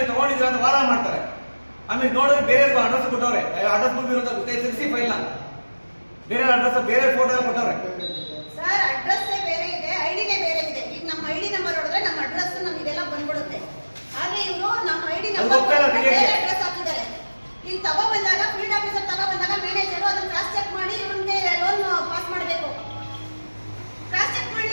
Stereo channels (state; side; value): inverted; both; correlation -1.00